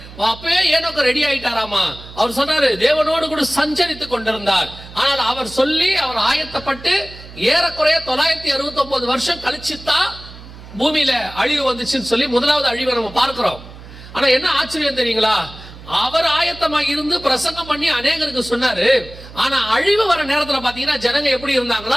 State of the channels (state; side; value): noise; right; hum, 17 dB below the sound